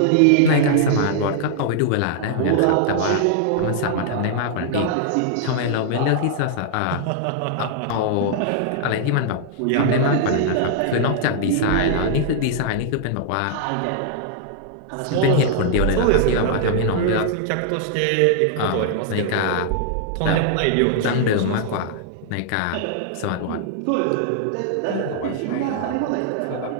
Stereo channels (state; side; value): different; both; correlation -0.01